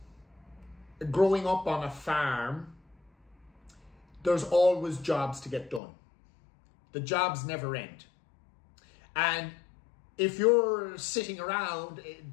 growing up on a farm, there's always jobs to get done. The jobs never end. And if you're sitting around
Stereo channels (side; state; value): right; drops out; at 5.8 s